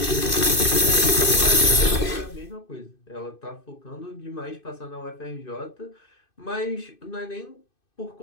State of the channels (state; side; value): late; right; 2.6 ms